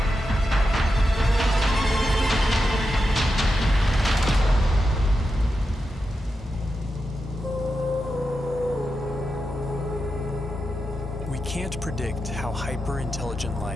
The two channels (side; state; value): both; normal; correlation 0.89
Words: Can't predict how hyper-intelligent